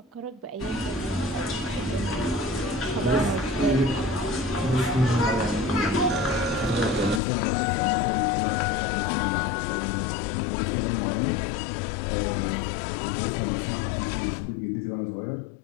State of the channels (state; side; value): drops out; right; at 7.2 s